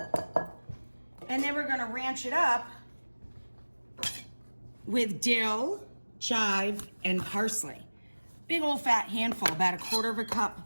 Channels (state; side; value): inverted; both; correlation -1.00